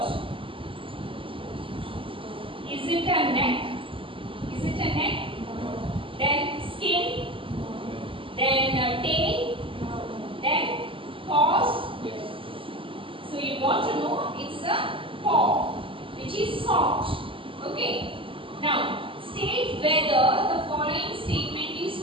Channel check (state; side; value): late; left; 0.25 ms